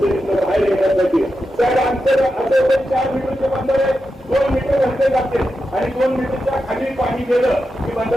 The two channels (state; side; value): normal; both; correlation 0.89